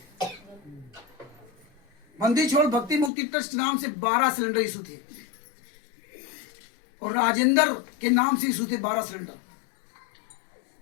बंदी छोड़ भक्ति मुक्ति ट्रस्ट नाम से 12 सिलेंडर इशू थे, और राजेंद्र के नाम से इशू थे 12 सिलेंडर।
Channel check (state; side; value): drops out; right; at 3.1 s